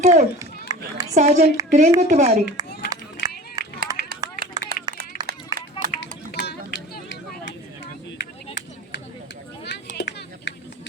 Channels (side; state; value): both; normal; correlation 0.38